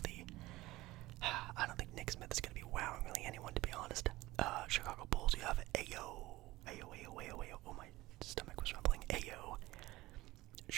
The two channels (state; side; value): quieter; left; 18.5 dB